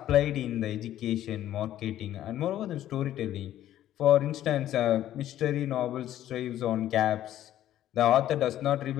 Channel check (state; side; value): quieter; right; 12.5 dB